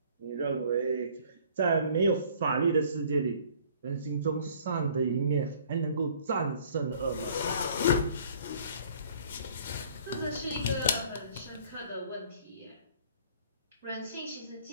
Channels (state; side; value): inverted; both; correlation -0.55